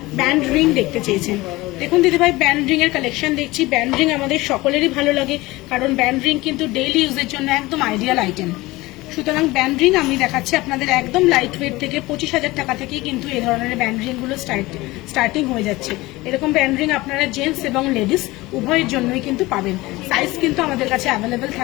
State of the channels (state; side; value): quieter; right; 20.2 dB